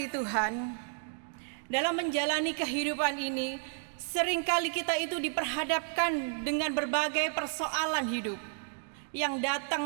Tuhan, dalam menjalani kehidupan ini, seringkali kita itu diperhadapkan dengan berbagai persoalan hidup yang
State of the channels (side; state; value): left; silent; 56 dB below the other